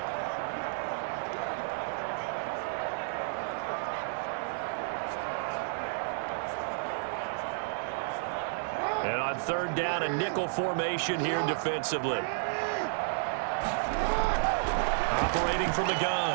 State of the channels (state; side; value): silent; left; digital silence